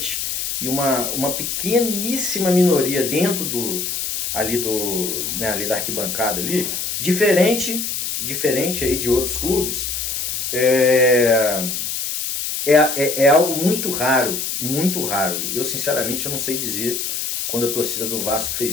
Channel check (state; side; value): noise; left; hiss, 3 dB below the sound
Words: e uma pequeníssima minoria dentro ali da arquibancada ali, diferente aí de outros clubes, é, é algo muito raro, muito raro. Eu, sinceramente, eu não sei dizer quando a torcida do Vasco